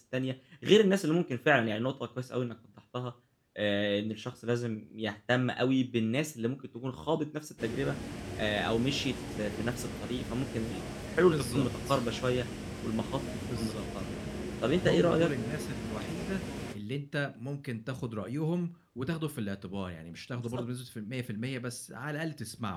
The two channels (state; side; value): identical; both; correlation 1.00